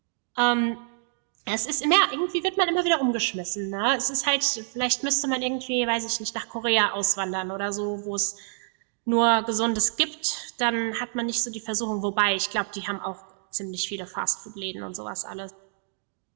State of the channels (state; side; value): silent; left; digital silence